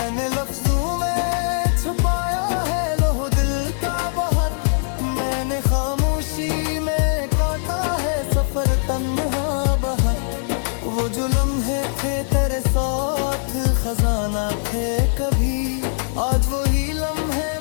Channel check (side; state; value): right; silent; digital silence